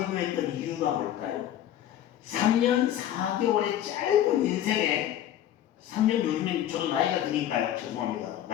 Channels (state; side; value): quieter; right; 11.5 dB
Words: 이유가 뭘까요? 3년 4개월의 짧은 인생에 3년, 요즘엔 저도 나이가 드니까요. 죄송합니다.